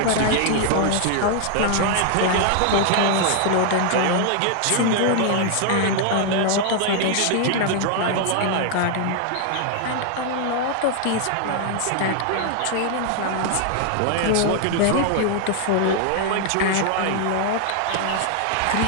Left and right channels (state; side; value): different; both; correlation 0.00